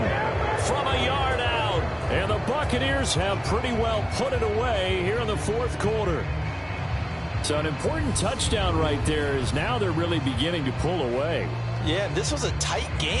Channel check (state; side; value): identical; both; correlation 1.00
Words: from a yard out. And the Buccaneers have pretty well put it away here in the 4th quarter. So an important touchdown right there is now they're really beginning to pull away. Yeah, this was a tight